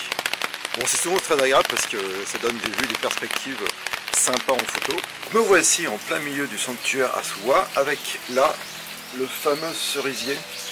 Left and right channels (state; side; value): identical; both; correlation 1.00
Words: Bon, c'est souvent très agréable parce que ça donne des vues, des perspectives sympas en photo. Me voici en plein milieu du sanctuaire Asuwa avec là le fameux cerisier.